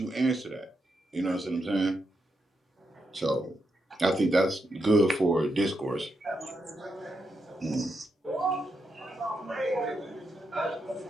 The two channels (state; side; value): normal; both; correlation 0.83